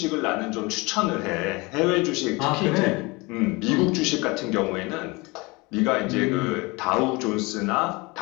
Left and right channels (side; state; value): right; quieter; 25.2 dB